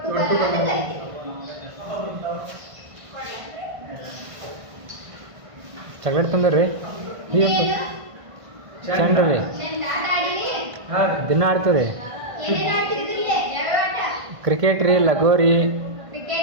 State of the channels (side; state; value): left; late; 1.5 ms